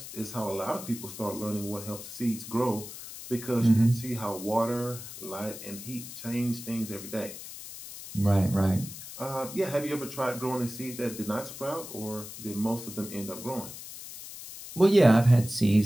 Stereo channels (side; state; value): left; noise; hiss, 12 dB below the sound